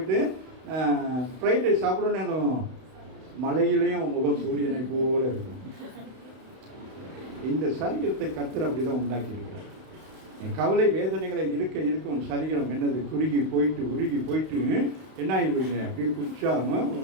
ஃப்ரைட் ரைஸ் சாப்பிடணும்னு, மலையிலையும் முகம் சூரியனை போல இருக்கும். இந்த சரீரத்தை கர்த்தர் அப்படி தான் உண்டாக்கியிருக்கிறார். கவலை வேதனைகளை இருக்கும் சரீரம் என்னது, குறுகி போயிட்டு உருகி போயிட்டு என்ன ஆயிடுவீங்க, அப்படியே குச்சாமல்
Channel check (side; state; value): left; late; 31 ms